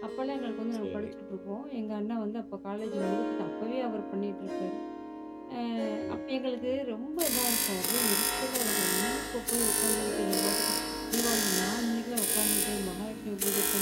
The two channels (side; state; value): both; identical; correlation 1.00